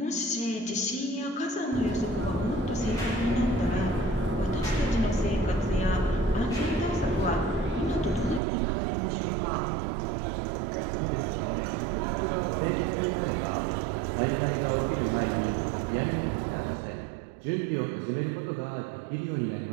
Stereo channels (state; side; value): drops out; left; at 8.4 s